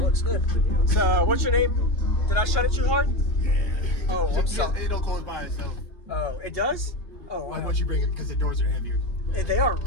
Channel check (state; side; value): late; right; 2.8 ms